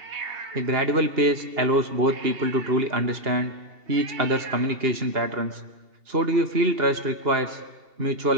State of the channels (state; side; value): late; left; 2.7 ms